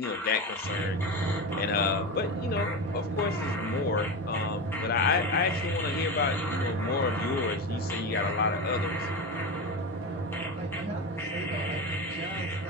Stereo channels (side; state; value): both; normal; correlation 0.21